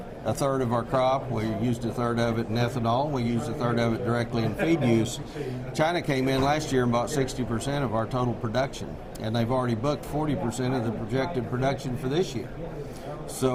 a third of our crop. We used a third of it in ethanol. We used a third of it directly in feed use. China came in last year and bought 60% of our total production, and they've already booked 40% of the projected production for this year.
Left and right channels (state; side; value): identical; both; correlation 1.00